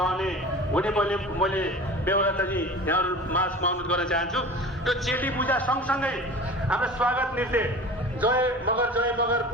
हुने मैले बेहोराताजी यहाँहरू माझमा अनुरोध गर्न चाहन्छु। यो चेली पूजा सँगसँगै हाम्रो स्वागत नृत्य जय मगर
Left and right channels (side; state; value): both; normal; correlation 0.38